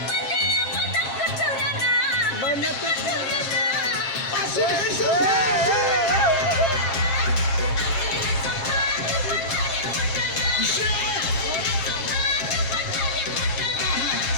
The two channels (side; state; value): right; late; 7.5 ms